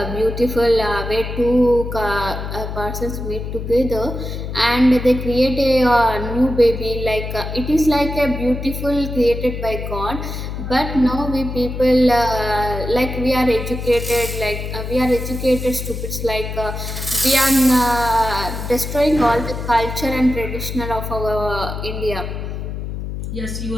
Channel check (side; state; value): left; noise; hum, 6 dB below the sound